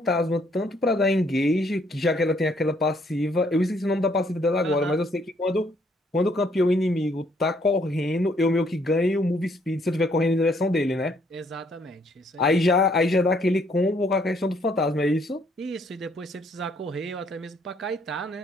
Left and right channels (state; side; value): normal; both; correlation 0.67